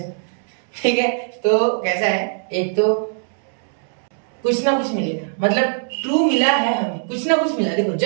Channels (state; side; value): silent; left; digital silence